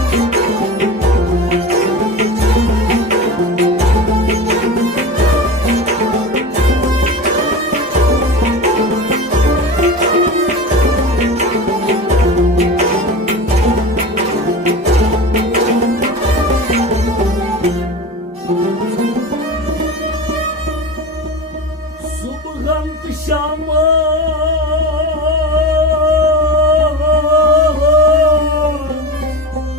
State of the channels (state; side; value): normal; both; correlation 0.29